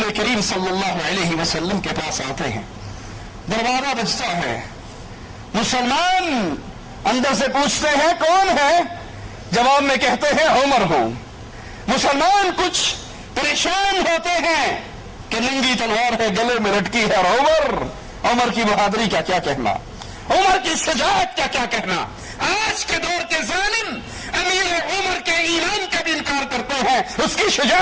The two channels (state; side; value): identical; both; correlation 1.00